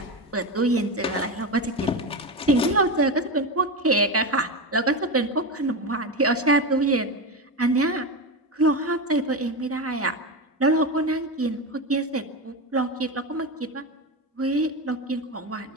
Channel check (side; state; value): both; normal; correlation 0.17